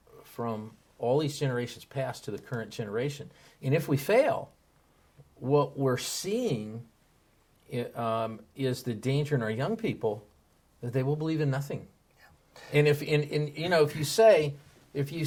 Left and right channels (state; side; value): identical; both; correlation 1.00